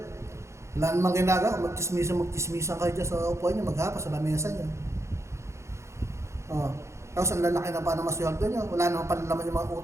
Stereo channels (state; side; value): late; left; 0.14 ms